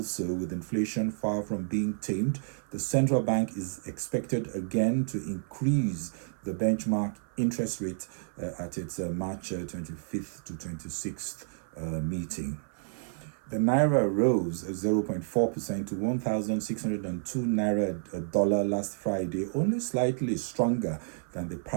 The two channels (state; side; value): silent; left; 57 dB below the other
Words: with inflation far from being tamed, the central bank is expected again to increase the benchmark interest rate at its March 25th to 26th meeting. The Naira rose 0.4% to 1,602 Naira a dollar last Friday, only slightly stronger than the